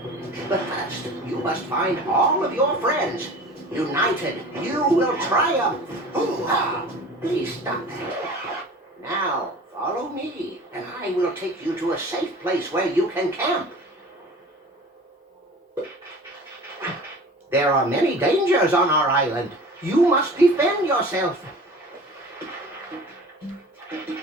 But first, you must find all of your friends. United, you will triumph. Hoo-ha! Please stop that. Now, follow me, and I will take you to a safe place where you can camp. There are many dangers on our island. You must defend yourself.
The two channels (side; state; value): both; normal; correlation 0.41